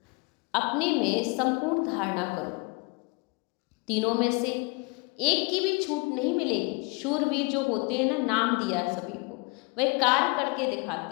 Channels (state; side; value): quieter; right; 29.3 dB